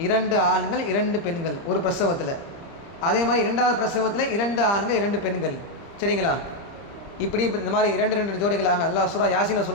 2 ஆண்கள் 2 பெண்கள் ஒரு பிரசவத்தில். அதே மாதிரி 2வது பிரசவத்தில் 2 ஆண்கள் 2 பெண்கள். சரிங்களா? இப்படி இந்த மாதிரி 2 ஜோடிகளாக அல்லாஹ் சூரா யாசீனில்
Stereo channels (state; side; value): late; right; 30 ms